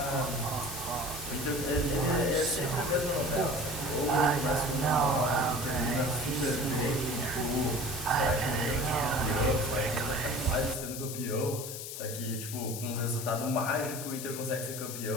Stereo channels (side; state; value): left; noise; hiss, 8 dB below the sound